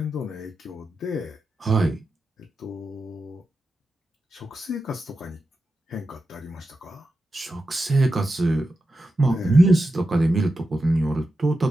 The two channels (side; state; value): both; normal; correlation 0.90